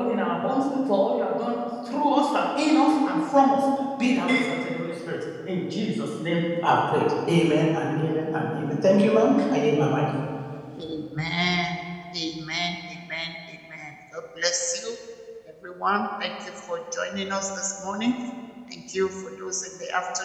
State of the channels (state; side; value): identical; both; correlation 1.00